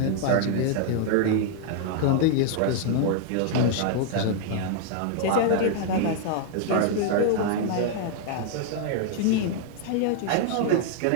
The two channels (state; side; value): different; both; correlation 0.00